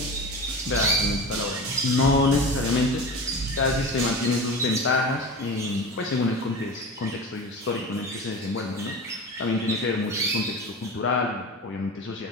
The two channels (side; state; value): both; normal; correlation 0.30